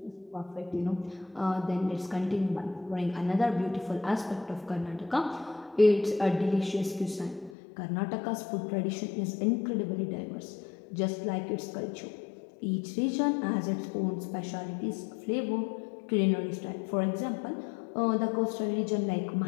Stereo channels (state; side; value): drops out; right; at 7.6 s